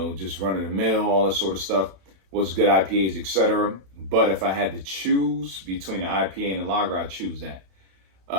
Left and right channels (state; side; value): late; left; 32 ms